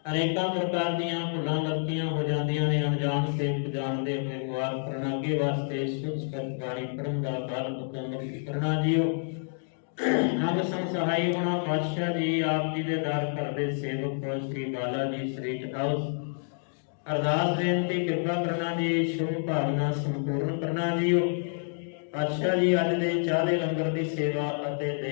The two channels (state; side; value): silent; right; digital silence